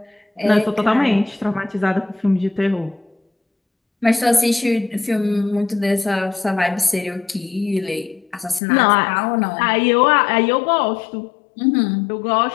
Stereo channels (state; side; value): drops out; right; at 8.6 s